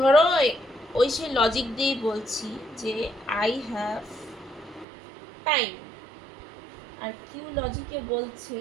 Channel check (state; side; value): drops out; left; at 4.9 s